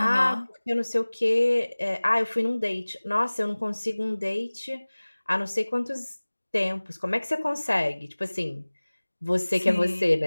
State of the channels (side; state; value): both; inverted; correlation -1.00